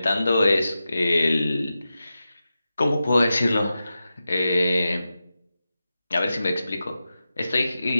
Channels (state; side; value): inverted; both; correlation -0.92